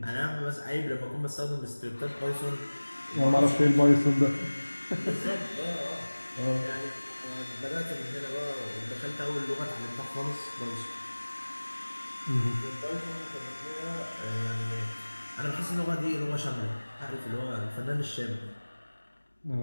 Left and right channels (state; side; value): inverted; both; correlation -1.00